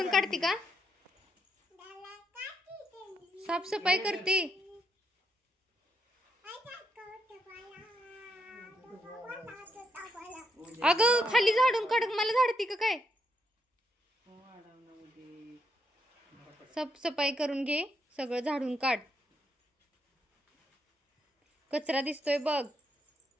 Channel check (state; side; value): normal; both; correlation 0.78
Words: काढते का साफसफाई करते. अगं खाली झाडून काढ मला झाडते का काय. साफसफाई करून घे सगळं झाडून काढ. कचरा दिसतोय बघ